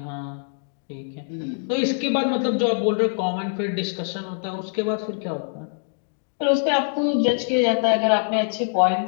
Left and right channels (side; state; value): right; silent; 61 dB below the other